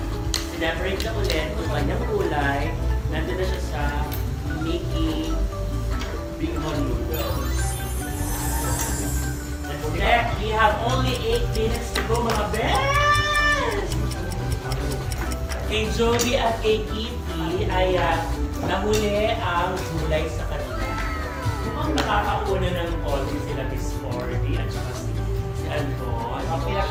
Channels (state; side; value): identical; both; correlation 1.00